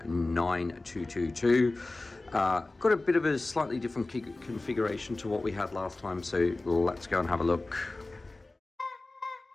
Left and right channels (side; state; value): right; quieter; 3.1 dB